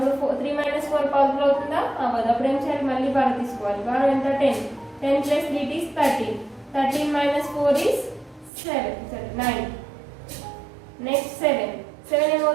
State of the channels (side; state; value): left; drops out; at 8.5 s